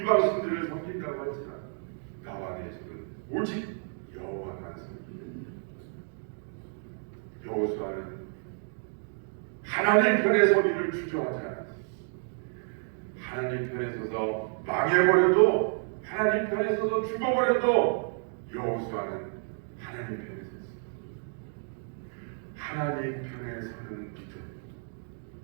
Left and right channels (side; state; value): left; silent; 58 dB below the other